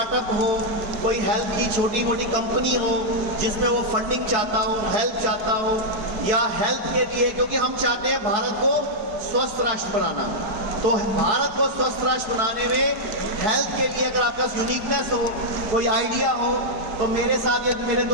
हो, कोई हेल्थ की छोटी मोटी कंपनी हो जिसमें वो फंडिंग चाहता हो, हेल्प चाहता हो, या हेल्थ के लिए, क्योंकि हम चाहते हैं भारत को स्वस्थ राष्ट्र बनाना, तो भारत को स्वस्थ राष्ट्र बनाने में हेल्थ के लिए अगर आपका यूनिकनेस हो, कोई आइडिया हो, तो मेरे साथ ये मेरे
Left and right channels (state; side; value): late; left; 4.9 ms